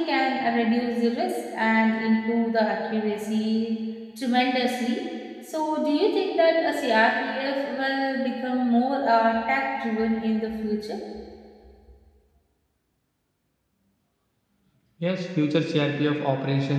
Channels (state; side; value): identical; both; correlation 1.00